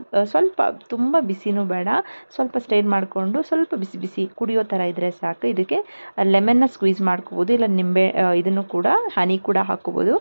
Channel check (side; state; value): both; inverted; correlation -1.00